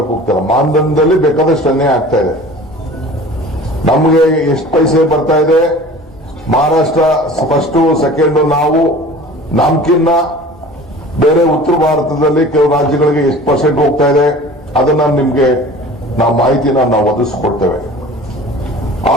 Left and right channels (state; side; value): normal; both; correlation 0.42